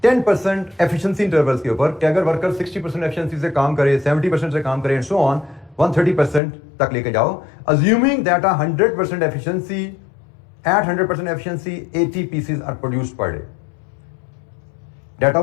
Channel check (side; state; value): right; drops out; at 6.4 s